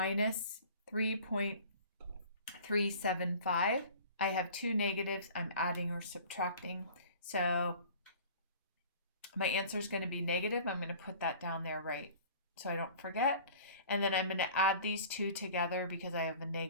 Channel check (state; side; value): inverted; both; correlation -0.45